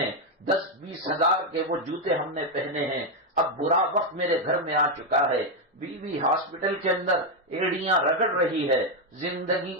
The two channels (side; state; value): both; normal; correlation 0.04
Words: 10-20 ہزار کے وہ جوتے ہم نے پہنے ہیں۔ اب برا وقت میرے گھر میں آ چکا ہے، بیوی ہاسپٹل کے اندر ایڑیاں رگڑ رہی ہے، زندگی